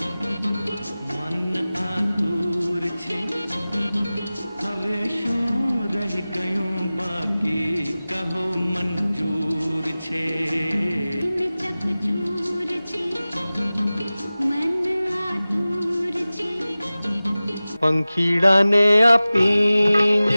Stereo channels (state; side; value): inverted; both; correlation -0.97